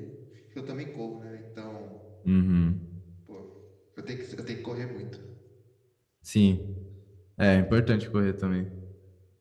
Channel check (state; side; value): identical; both; correlation 1.00